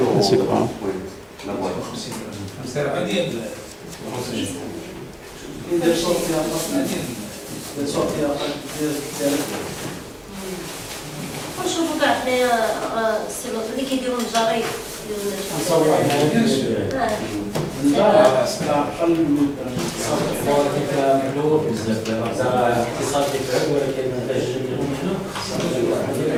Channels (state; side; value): identical; both; correlation 1.00